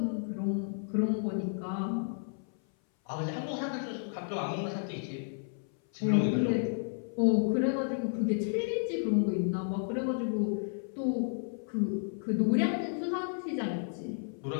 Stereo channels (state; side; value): silent; right; 56 dB below the other